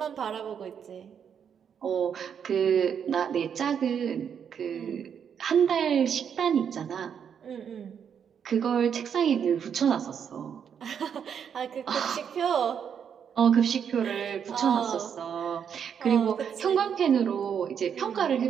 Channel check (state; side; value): quieter; left; 7.8 dB